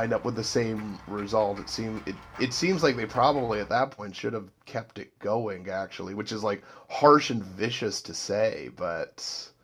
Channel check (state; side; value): identical; both; correlation 1.00